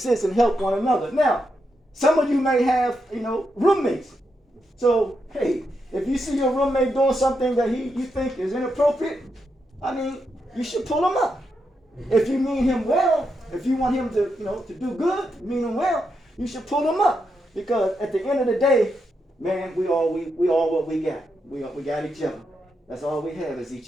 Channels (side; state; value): both; normal; correlation 0.83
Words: and help one another. Now, some of you may have, roommates. So, hey, if you see your roommate doing something that you think is inappropriate, you should pull him up. If you mean him well, if you want him to, to do good, mean him well, you should pull him up. Because at the end of the day, man, we all what we got. We got each other. That's all we have is